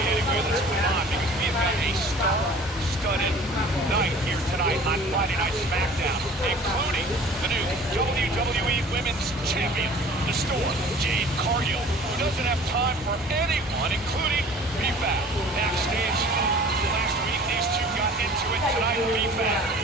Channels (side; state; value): both; normal; correlation 0.47